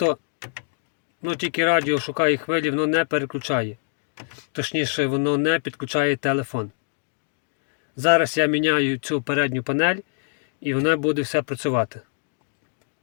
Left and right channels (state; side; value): silent; right; digital silence